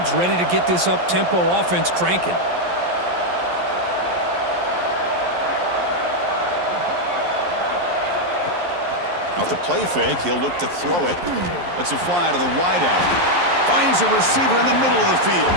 ready to get this up-tempo offense cranking. Off the play fake, he'll look to throw it. Lets it fly to the wideout. Finds a receiver in the middle of the field.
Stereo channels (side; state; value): left; late; 11 ms